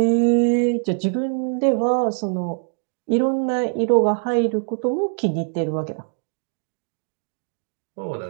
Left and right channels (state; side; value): silent; left; 60 dB below the other